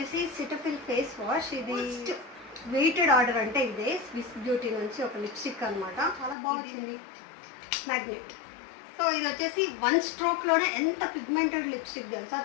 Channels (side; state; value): right; drops out; at 6.4 s